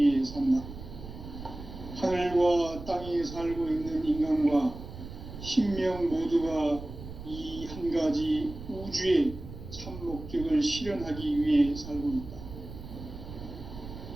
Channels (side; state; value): right; noise; rumble, 12 dB below the sound